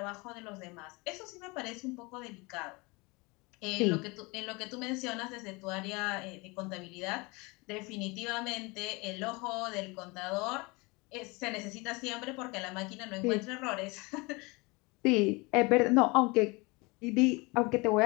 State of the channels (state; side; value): quieter; right; 26.3 dB